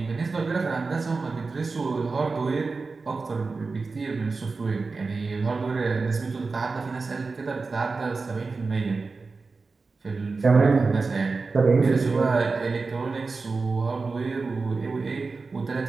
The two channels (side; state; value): left; quieter; 4.1 dB